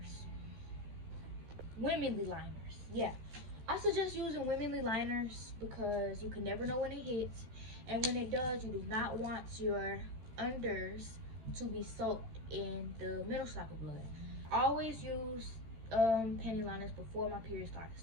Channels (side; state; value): left; late; 13 ms